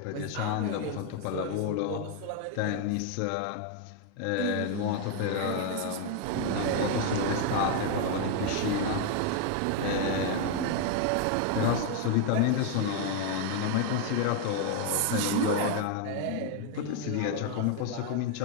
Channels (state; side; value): different; both; correlation 0.00